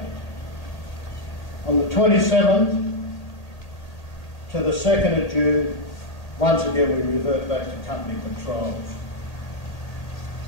On the 27th to the 2nd of June, once again we revert back to company patrols.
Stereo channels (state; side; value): late; right; 1.8 ms